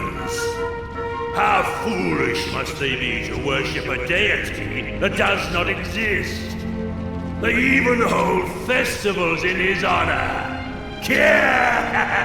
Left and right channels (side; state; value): both; identical; correlation 1.00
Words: How foolish must they be to worship a deity that does not exist? They even hold festivals in his honor.